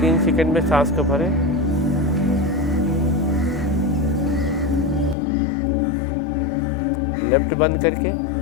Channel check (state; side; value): drops out; right; at 5.2 s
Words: सेकंड में सांस को भरें। लेफ्ट बंद करके